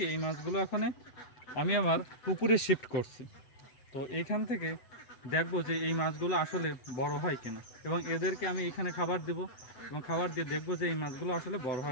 এই মাছগুলো আমি আমার পুকুরে শিফট করছি। তো এইখান থেকে দেখবো যে এই মাছগুলো আসলে বড় হয় কিনা, এবং এদেরকে আমি এখানে খাবার দেব এবং খাবার দিয়ে দেখবো যে এই মাছগুলো আসলে বড়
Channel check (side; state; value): right; late; 8.0 ms